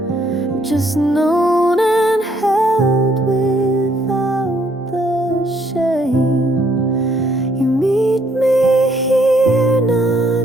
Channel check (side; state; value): both; normal; correlation 0.68